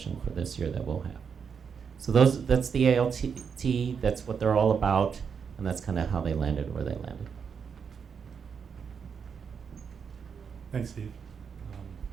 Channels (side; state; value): left; quieter; 6.5 dB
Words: for this year that we'll have. So that's the ALT, that's what they're all about, and that's kind of how they landed where they landed. Thanks, Steve.